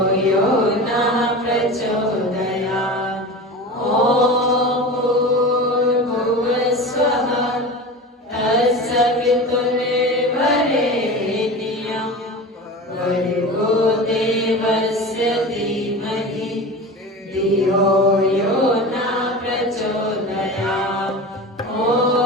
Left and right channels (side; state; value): both; normal; correlation 0.31